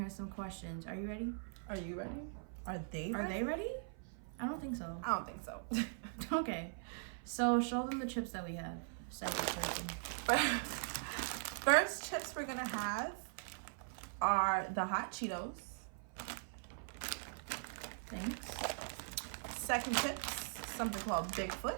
some questions. Are you ready? Are you ready? Are they ready? Are they ready? I don't think so. I don't think so. Okay, so show them the chips that we have. Second person. First chips we're gonna have are the hot Cheetos. Thanks. Second chips, something called Bigfoot.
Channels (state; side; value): silent; left; 50 dB below the other